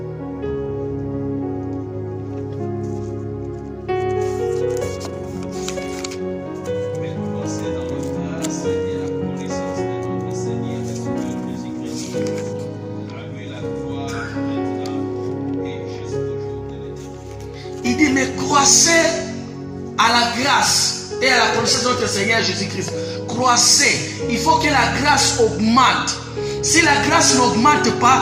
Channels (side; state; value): both; identical; correlation 1.00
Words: Croissez à la grâce et à la connaissance de notre Seigneur Jésus-Christ. Croissez. Il faut que la grâce augmente. Si la grâce n'augmente